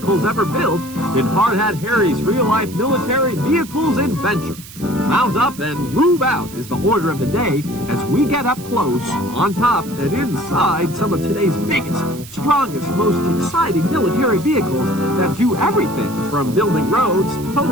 ever built in Hard Hat Harry's real-life military vehicles adventure. Mount up and move out is the order of the day as we get up close, on top, and inside some of today's biggest, strongest, most exciting military vehicles that do everything from building roads,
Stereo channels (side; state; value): right; noise; hiss, 17 dB below the sound